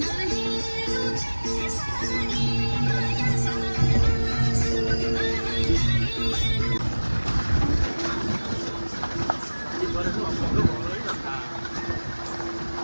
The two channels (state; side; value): inverted; both; correlation -1.00